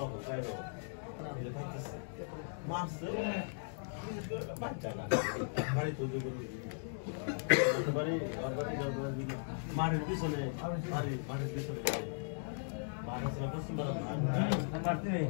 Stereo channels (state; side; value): silent; right; digital silence